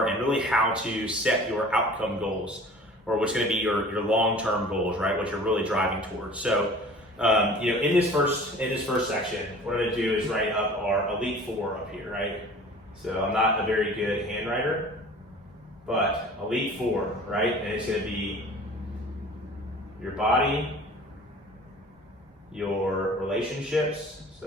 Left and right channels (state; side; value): normal; both; correlation 0.45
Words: and really how to set your outcome goals, or what's gonna be your long-term goals, right? What you're really driving towards. So, in this first section, what I'm gonna do is write up our Elite 4 up here, right? So I'm not a very good handwriter, but Elite 4, right? And it's gonna be your body, your relationships,